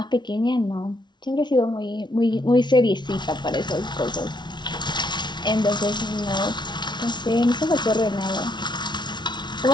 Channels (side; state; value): right; late; 0.21 ms